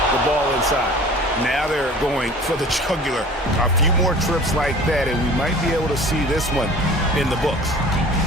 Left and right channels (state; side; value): normal; both; correlation 0.44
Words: the ball inside. Now they're going for the jugular. A few more trips like that, and we might be able to see this one in the books.